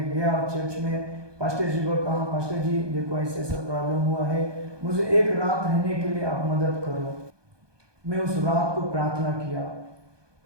गया चर्च में, पास्टर जी को कहा, पास्टर जी देखो ऐसे ऐसा प्रॉब्लम हुआ है, मुझे एक रात रहने के लिए आप मदद करो। मैं उस रात को प्रार्थना किया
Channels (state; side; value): late; left; 1.2 ms